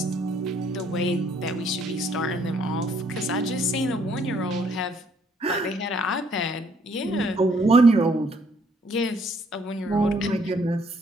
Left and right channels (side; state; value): both; normal; correlation 0.66